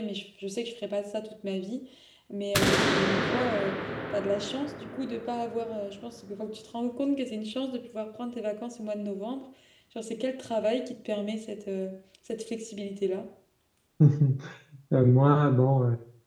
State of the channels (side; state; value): both; identical; correlation 1.00